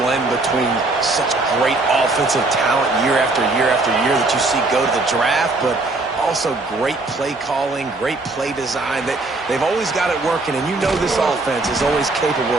between such great offensive talent year after year after year that you see go to the draft, but also great play calling, great play design. They've always got it working, and you know this offense is always capable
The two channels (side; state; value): left; quieter; 3.2 dB